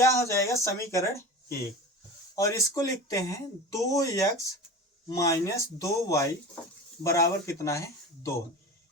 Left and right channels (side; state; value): both; normal; correlation 0.32